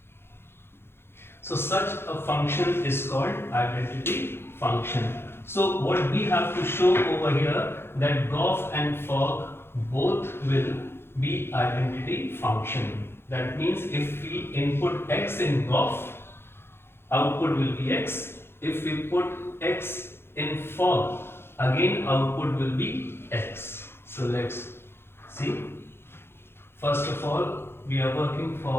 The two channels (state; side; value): late; right; 0.11 ms